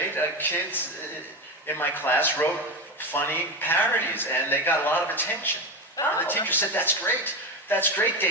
kids in my class wrote funny parodies, and they got a lot of attention. Oh. And the teacher said, "That's great. That's great,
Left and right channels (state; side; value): normal; both; correlation 0.18